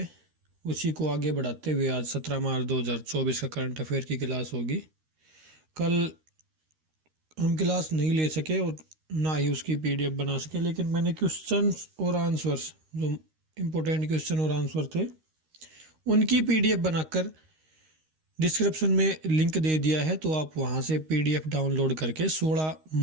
उसी को आगे बढ़ाते हुए आज 17 मार्च 2024 का करंट अफेयर की क्लास होगी। कल हम क्लास नहीं ले सके और ना ही उसकी पीडीएफ बना सके, लेकिन मैंने क्वेश्चंस और आंसर्स, जो इम्पोर्टेंट क्वेश्चन और आंसर थे, उनकी पीडीएफ बनाकर डिस्क्रिप्शन में लिंक दे दिया है, तो आप वहां से पीडीएफ डाउनलोड करके 16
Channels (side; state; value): left; late; 13 ms